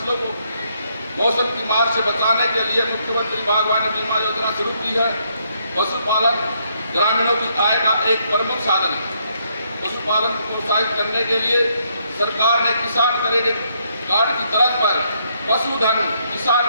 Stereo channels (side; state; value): both; inverted; correlation -0.73